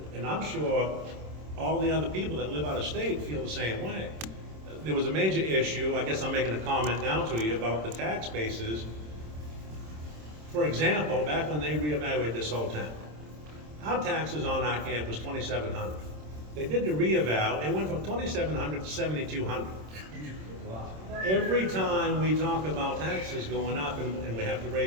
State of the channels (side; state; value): left; late; 26 ms